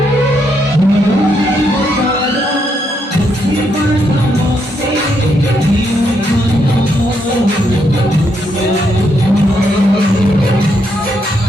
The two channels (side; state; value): both; normal; correlation 0.77